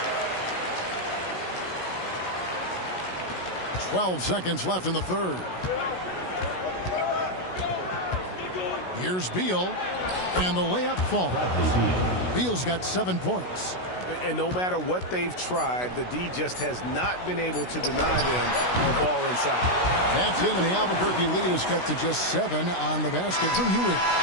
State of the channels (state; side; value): late; right; 16 ms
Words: 12 seconds left in the third. Here's Beal, and the layup falls. Beal's got 7 points. And no matter what they've tried, the D just has not been able to deny them the ball inside. That's in, and the Albuquerque lead is cut to just 7 on the basket from Ewing.